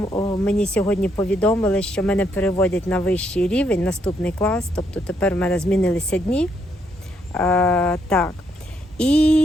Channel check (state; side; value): normal; both; correlation 0.75